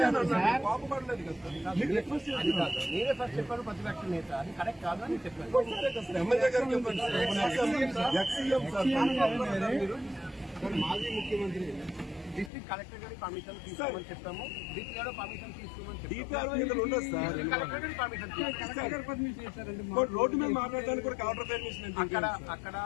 అన్నారు, కోపపడలేదు కదా. నేనే ఫస్ట్ చెప్పాను ప్రతిపక్ష నేత, అది కరెక్ట్ కాదు అని చెప్పాను. ఎమ్మెల్యే గారు చెప్పండి, ఎక్స్సీఎం సార్, మాజీ ముఖ్యమంత్రి డిస్ట్రిక్ట్ కలెక్టర్ గారి పర్మిషన్ తీసుకోమని చెప్పాము, డిపిఆర్ పర్మిషన్ తీసుకోమని చెప్పాము. రోడ్డు మీద మాట్లాడడానికి కూడా కలెక్టర్ పర్మిషన్ అక్కడ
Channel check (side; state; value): right; drops out; at 12.5 s